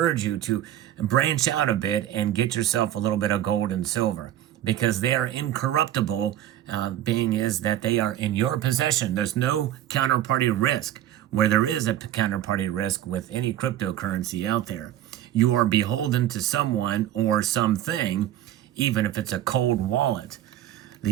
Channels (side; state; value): left; quieter; 12.2 dB